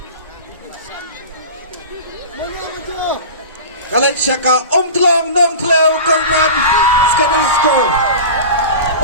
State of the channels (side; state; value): both; inverted; correlation -0.32